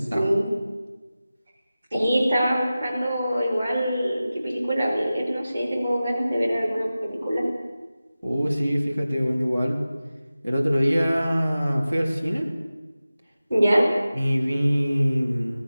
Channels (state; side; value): inverted; both; correlation -0.96